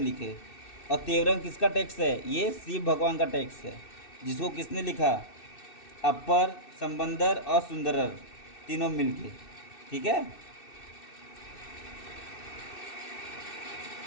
और तेवरम किसका टेक्स्ट है? ये शिव भगवान का टेक्स्ट है, जिसको किसने लिखा? अपर, संबंदर और सुंदरर तीनों मिलके, ठीक है।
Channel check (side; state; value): right; late; 2.6 ms